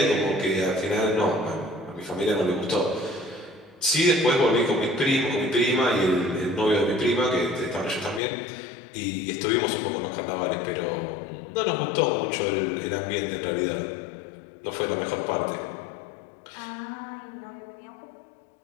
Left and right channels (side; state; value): right; drops out; at 8.2 s